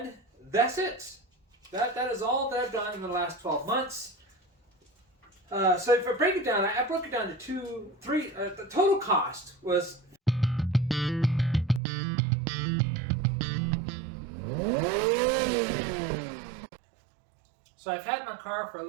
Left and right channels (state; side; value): drops out; left; at 11.8 s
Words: that's it. That is all that I've done in the last 12 months. So if I break it down, I broke it down to three. The total cost was so I've had my car for a